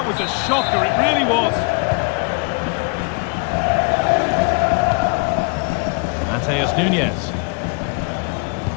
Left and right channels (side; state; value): right; quieter; 36.0 dB